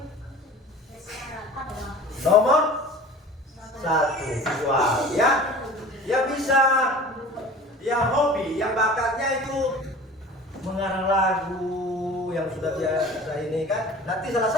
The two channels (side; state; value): both; normal; correlation 0.41